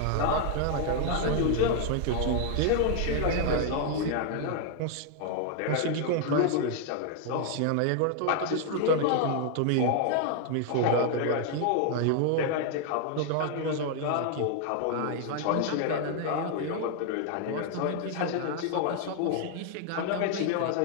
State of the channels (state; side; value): different; both; correlation 0.00